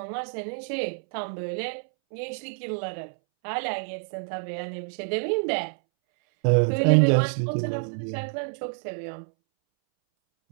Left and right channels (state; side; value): silent; left; 60 dB below the other